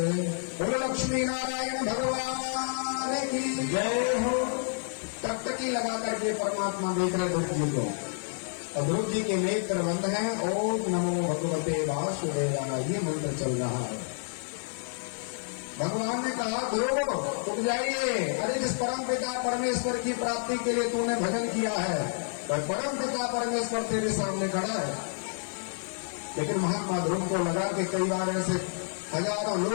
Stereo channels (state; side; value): silent; right; 58 dB below the other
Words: बोलो लक्ष्मी नारायण भगवान की जय हो। टकटकी लगा करके परमात्मा देख रहे ध्रुव जी को, और ध्रुव जी के नेत्र बंद हैं। ओम नमो भगवते वासुदेवाय, ये मंत्र चल रहा है। भगवान ने कहा ध्रुव उठ जाइए, अरे जिस परम पिता परमेश्वर की प्राप्ति के लिए तूने भजन किया है, वह परम पिता परमेश्वर तेरे सामने खड़ा है। लेकिन महात्मा ध्रुव को लगा कि कई बार ऐसे हजारों